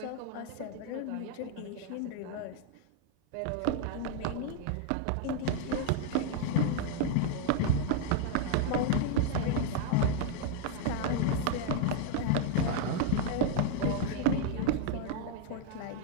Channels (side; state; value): both; different; correlation 0.00